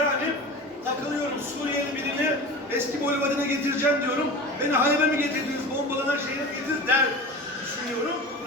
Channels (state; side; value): normal; both; correlation 0.32